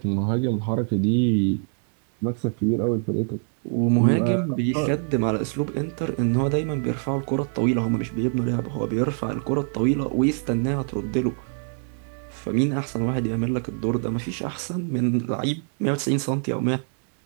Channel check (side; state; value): left; silent; 56 dB below the other